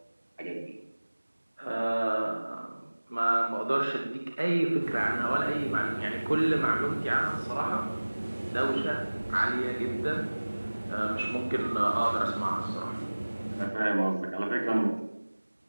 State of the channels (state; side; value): inverted; both; correlation -1.00